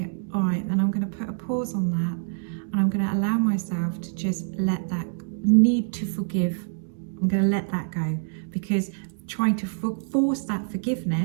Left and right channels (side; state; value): left; silent; digital silence